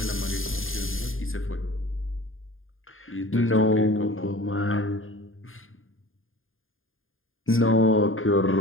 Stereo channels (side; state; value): right; late; 0.59 ms